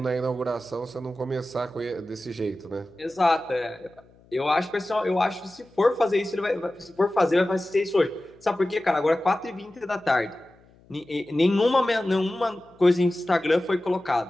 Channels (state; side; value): noise; left; hum, 28 dB below the sound